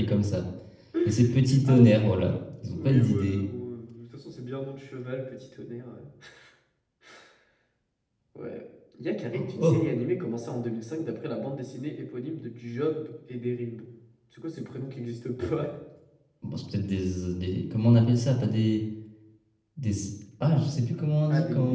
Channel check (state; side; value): identical; both; correlation 1.00